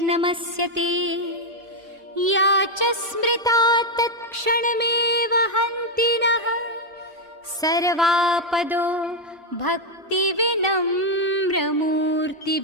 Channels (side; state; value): both; normal; correlation 0.01